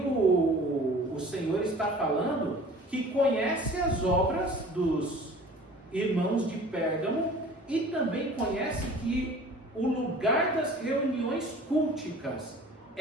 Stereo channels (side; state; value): both; normal; correlation 0.45